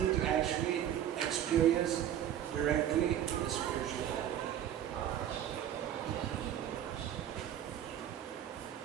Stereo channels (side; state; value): left; quieter; 10.7 dB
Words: to actually experience directly the spiritual world.